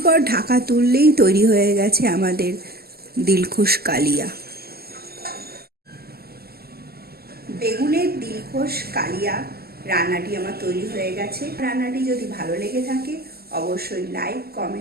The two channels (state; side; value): late; left; 0.46 ms